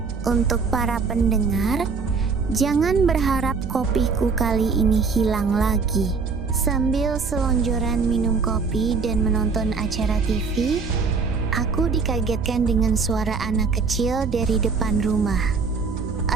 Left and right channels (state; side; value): quieter; left; 4.8 dB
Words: Untuk para pendengar, jangan berharap kopiku kali ini hilang lagi. Sambil selonjoran minum kopi dan menonton acara TV, aku dikagetkan dengan suara anak kecil dari depan rumah.